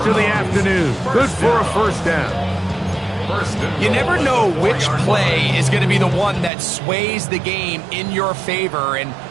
of the afternoon. Good for a first down. You never know which play is going to be the one that sways the game in your favor, and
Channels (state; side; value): drops out; left; at 6.5 s